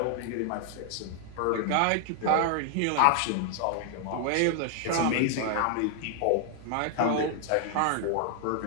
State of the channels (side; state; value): both; different; correlation 0.00